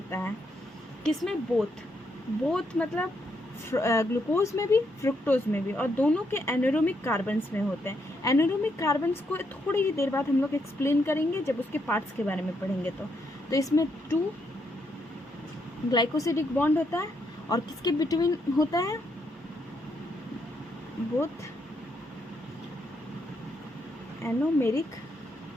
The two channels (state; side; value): normal; both; correlation 0.77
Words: है। किसमें? बोथ मतलब ग्लूकोज में भी फ्रुक्टोज में भी, और दोनों के एनारोमिक कार्बन्स में होते हैं। एनारोमिक कार्बन्स को थोड़ी ही देर बाद हम लोग एक्सप्लेन करेंगे जब उसके पार्ट्स के बारे में पढ़ेंगे। तो इसमें 2 ग्लाइकोसिडिक बॉन्ड होता है और किसके बिटवीन होता है? बोथ एनोमेरिक